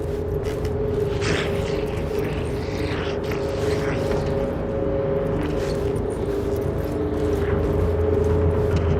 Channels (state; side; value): identical; both; correlation 1.00